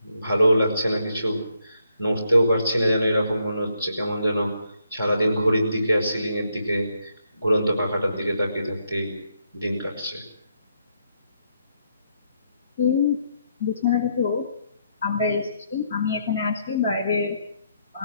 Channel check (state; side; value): inverted; both; correlation -0.76